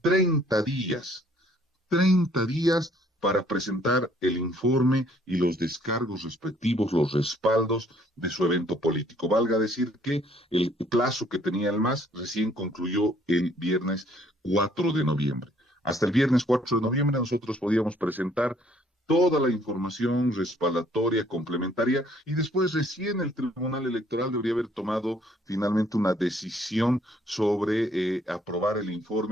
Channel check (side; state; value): both; normal; correlation 0.62